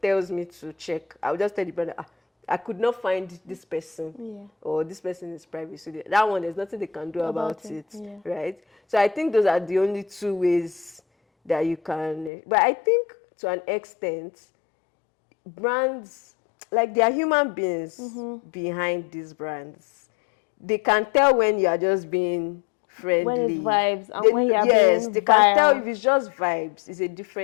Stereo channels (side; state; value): right; drops out; at 12.3 s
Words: tells me to check, I'll just tell the brand, I could not find this person, or this person is private. So that one, there's nothing they can do about it, right? So I think those are the only two ways that you can. But I think to an extent, brands, like, they are human beings behind these brands. They can tell when you are just being friendly. When it's vibes, and when you are being they can tell if it's just vibes. It's a